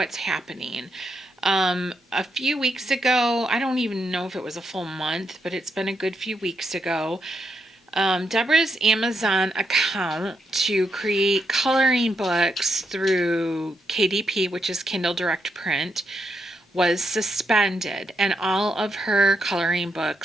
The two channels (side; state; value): both; normal; correlation 0.80